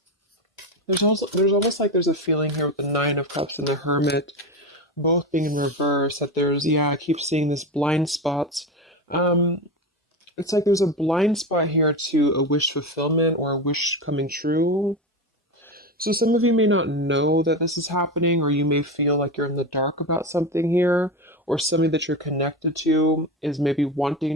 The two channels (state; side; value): normal; both; correlation 0.20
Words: There's almost like there's a feeling here with the Nine of Cups and the Hermit, both being in reverse. That I keep seeing this blind spots. It's like there's a blind spot here to a wish fulfillment or a wish coming true. So some of you may not know that this is happening, or you may feel like you're in the dark about something here, or somebody that you're connected to is maybe